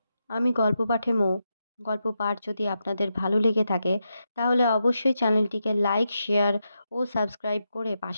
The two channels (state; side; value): inverted; both; correlation -0.86